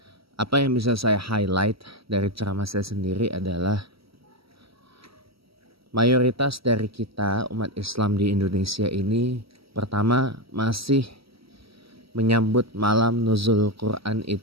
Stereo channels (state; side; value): late; left; 0.75 ms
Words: apa yang bisa saya highlight dari ceramah saya sendiri adalah mayoritas dari kita umat Islam di Indonesia ini pertama masih menyambut malam nuzul Quran